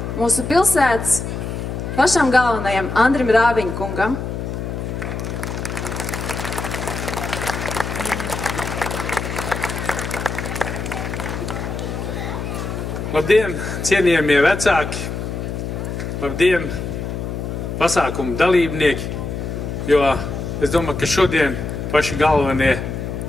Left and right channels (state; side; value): noise; left; hum, 5 dB below the sound